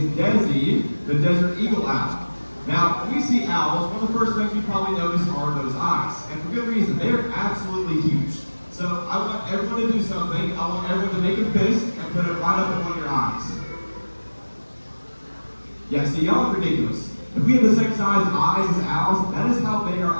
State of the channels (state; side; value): inverted; both; correlation -1.00